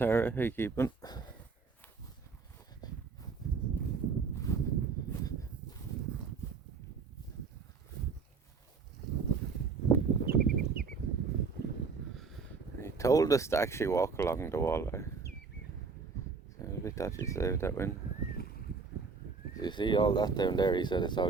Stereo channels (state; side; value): quieter; left; 4.9 dB